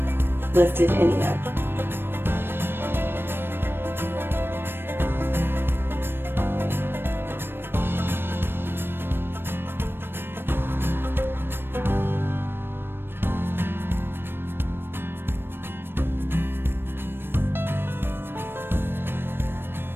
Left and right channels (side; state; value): left; late; 0.10 ms